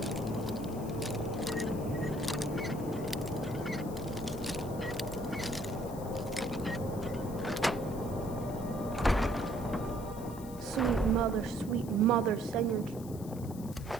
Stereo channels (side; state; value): left; noise; hiss, 18 dB below the sound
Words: Sweet mother, send your